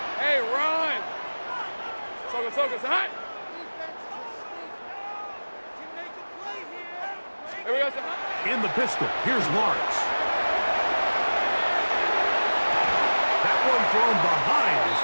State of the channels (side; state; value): both; inverted; correlation -1.00